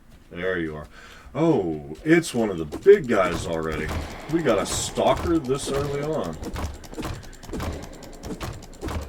There you are. Oh, it's one of the big guys already. We got a stalker this early on.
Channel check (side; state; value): both; identical; correlation 1.00